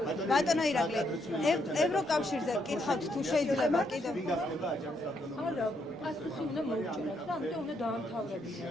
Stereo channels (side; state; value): both; normal; correlation 0.75